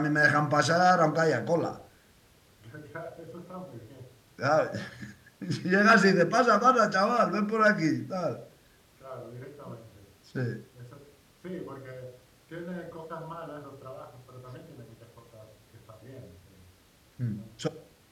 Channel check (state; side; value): identical; both; correlation 1.00